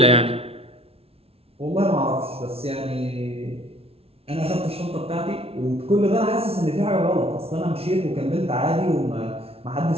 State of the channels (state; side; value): late; left; 0.29 ms